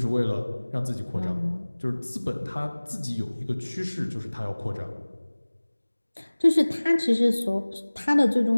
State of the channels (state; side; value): inverted; both; correlation -1.00